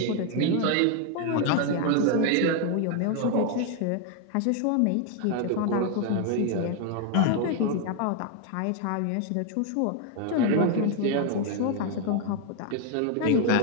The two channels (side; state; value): both; different; correlation 0.01